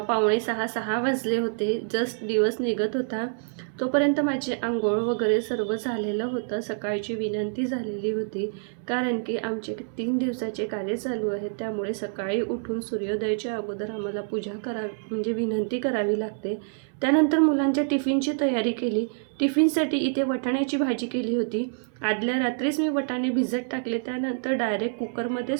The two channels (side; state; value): left; silent; 60 dB below the other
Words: वाजले होते. जस्ट दिवस निघत होता. तोपर्यंत माझी अंघोळ वगैरे सर्व झालेलं होतं. सकाळची विनंती झालेली होती, कारण की आमचे 3 दिवसाचे कार्य चालू आहे. त्यामुळे सकाळी उठून सूर्योदयाच्या अगोदर आम्हाला पूजा करावी म्हणजे विनंती करावी लागते. त्यानंतर मुलांच्या टिफिनची तयारी केली. टिफिनसाठी इथे वाटाण्याची भाजी केली होती. आदल्या रात्रीच मी वाटाणे भिजत टाकले. त्यानंतर डायरेक्ट